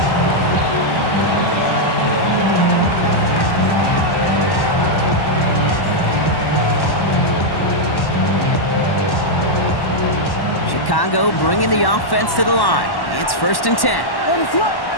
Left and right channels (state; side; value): late; right; 1.1 ms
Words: Chicago bringing the offense to the line. It's first and 10.